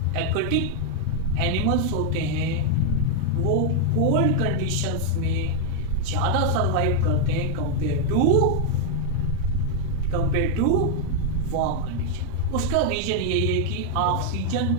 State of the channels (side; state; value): both; different; correlation 0.00